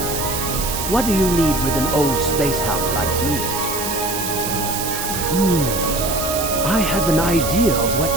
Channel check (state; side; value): noise; right; hiss, 4 dB below the sound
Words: What do you need with an old space hound like me? I have an idea of